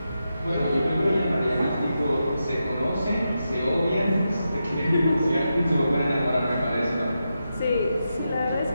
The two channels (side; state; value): both; inverted; correlation -0.87